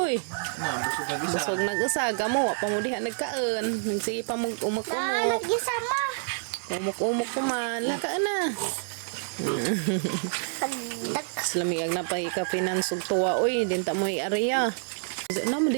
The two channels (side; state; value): left; silent; digital silence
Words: Busog nagasa gamo wa pa mo diha nagkaon. Nagsige pa mo umak-umok. Umok-umok ko man. Laka na. Slamiag na pa ka finansog tuwa. Uy, dinta mo i-area. Naman